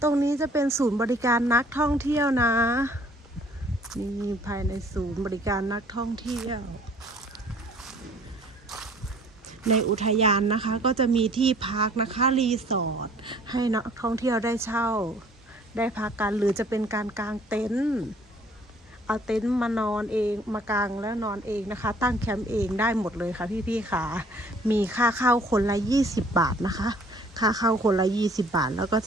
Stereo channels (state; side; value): normal; both; correlation 0.56